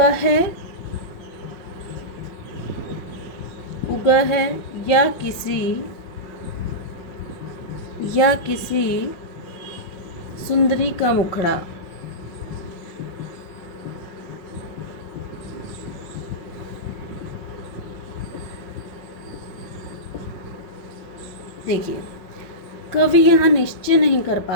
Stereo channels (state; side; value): late; right; 5.5 ms